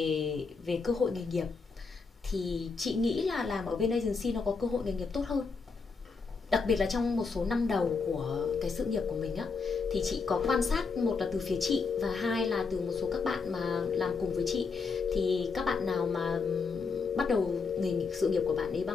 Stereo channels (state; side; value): quieter; right; 4.8 dB